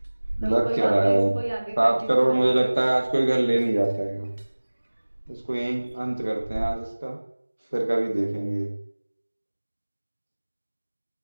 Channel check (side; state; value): both; inverted; correlation -1.00